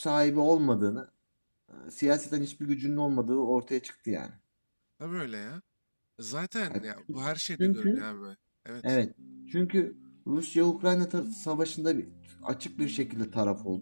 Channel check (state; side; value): inverted; both; correlation -1.00